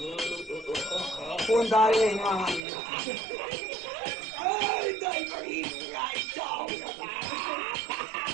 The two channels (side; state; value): left; drops out; at 2.6 s